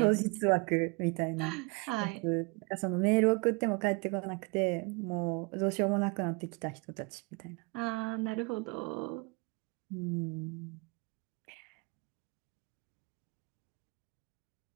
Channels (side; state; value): left; quieter; 29.8 dB